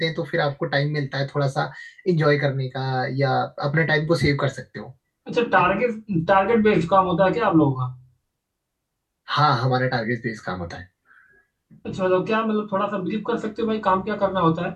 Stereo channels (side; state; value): both; identical; correlation 1.00